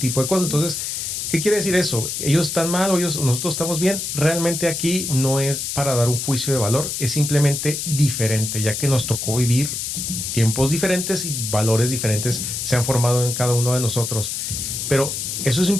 de cosas. Entonces, ¿qué quiere decir eso? ¿Ellos están mal o nosotros estamos bien? Realmente aquí no es para dar un juicio de valor, es simplemente diferente, ya que nos tocó vivir tiempos diferentes y valores diferentes se han formado en cada uno de nosotros. Pero eso es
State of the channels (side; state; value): left; noise; hiss, 3 dB below the sound